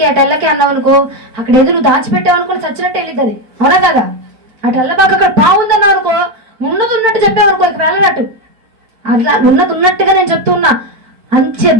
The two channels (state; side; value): late; left; 4.5 ms